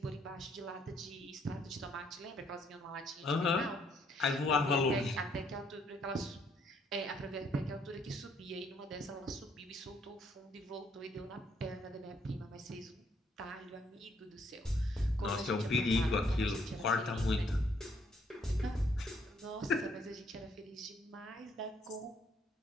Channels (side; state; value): both; normal; correlation 0.68